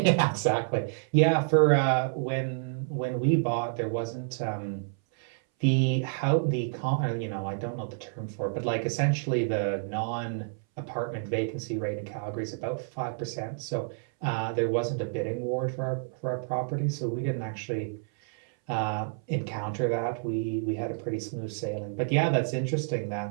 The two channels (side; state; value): left; silent; 59 dB below the other